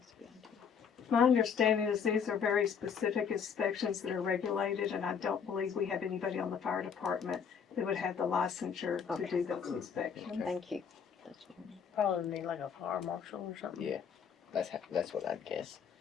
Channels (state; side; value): quieter; right; 6.9 dB